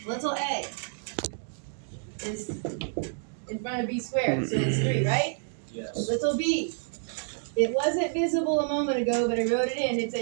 Little a is in front of b squared, so it's 3, right? Yes. Little b. It wasn't visible a moment ago, but I wrote it in. It's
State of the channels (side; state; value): left; silent; digital silence